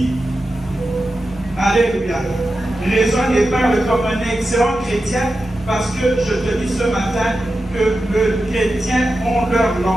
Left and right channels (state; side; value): normal; both; correlation 0.91